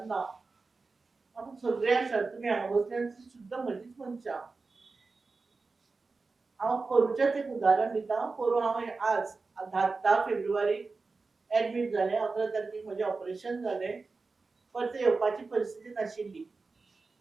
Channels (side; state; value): left; quieter; 4.0 dB